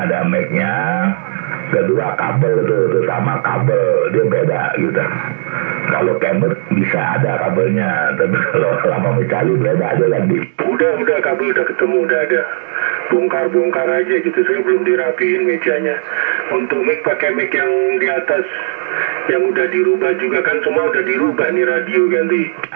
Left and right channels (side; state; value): left; silent; digital silence